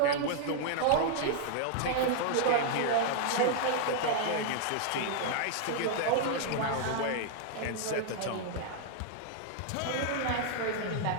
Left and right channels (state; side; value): different; both; correlation -0.01